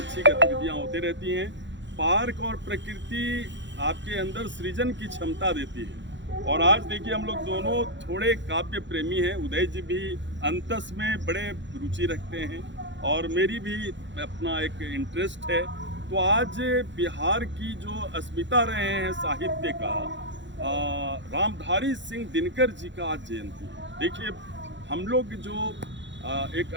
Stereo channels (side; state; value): left; late; 0.53 ms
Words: गतिविधियां होती रहती हैं। पार्क और प्रकृति आपके अंदर सृजन की क्षमता देती है। और आज देखिए, हम लोग दोनों थोड़े काव्य प्रेमी हैं। उदय जी भी अंतस में बड़े रुचि रखते हैं और मेरी भी अपना एक इंटरेस्ट है। तो आज बिहार की जो अस्मिता रहे हैं साहित्य का, रामधारी सिंह दिनकर जी का आज जयंती है। देखिए, हम लोग जो एक